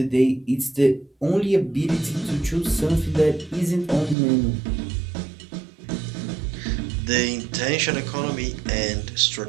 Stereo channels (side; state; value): left; drops out; at 4.2 s